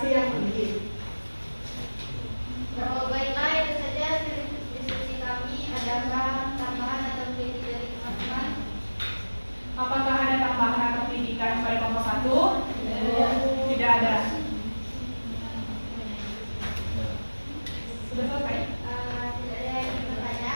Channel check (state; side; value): inverted; both; correlation -1.00